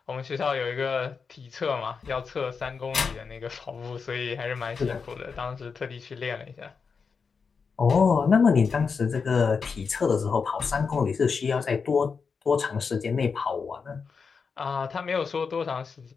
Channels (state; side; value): quieter; right; 5.4 dB